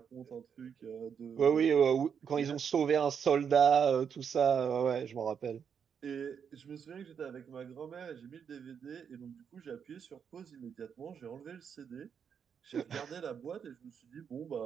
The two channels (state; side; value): quieter; left; 7.2 dB